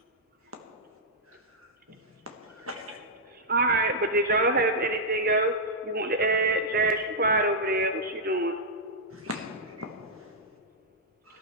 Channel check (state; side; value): normal; both; correlation -0.08